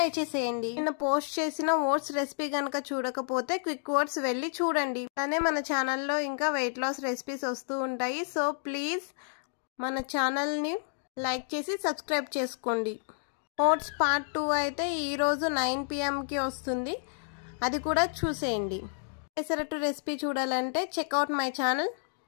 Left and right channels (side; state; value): right; silent; digital silence